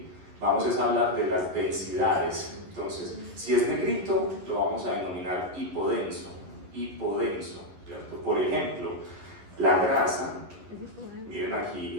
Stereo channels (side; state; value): left; late; 10 ms